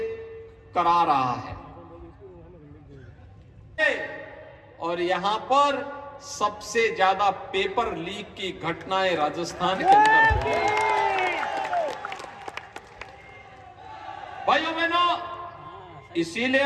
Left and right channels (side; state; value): both; identical; correlation 1.00